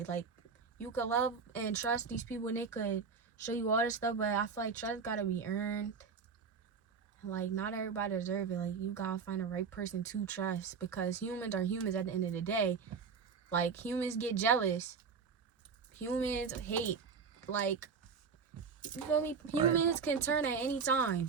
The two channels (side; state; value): left; quieter; 5.7 dB